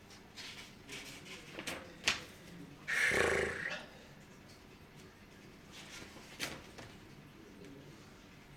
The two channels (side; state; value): both; identical; correlation 1.00